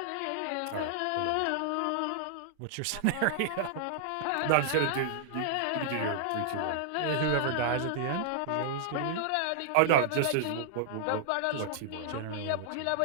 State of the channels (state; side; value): different; both; correlation -0.01